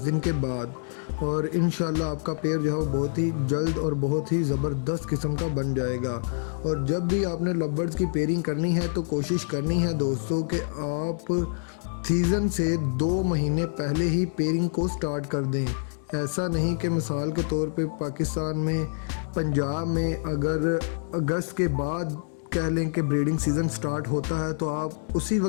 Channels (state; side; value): silent; right; digital silence